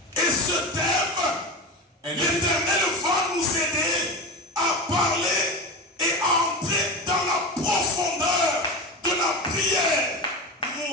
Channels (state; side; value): normal; both; correlation 0.24